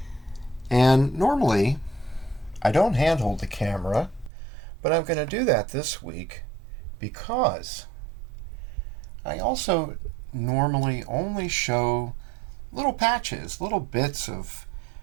And normally, I don't handhold the camera, but I'm going to do that this week because I also normally only show little patches, little bits of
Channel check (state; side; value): drops out; left; at 4.3 s